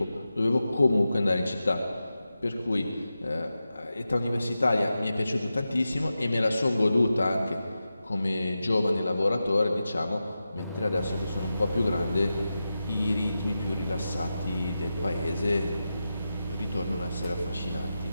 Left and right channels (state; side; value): inverted; both; correlation -0.91